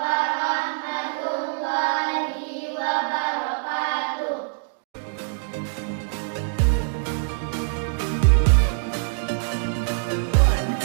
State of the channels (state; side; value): silent; left; digital silence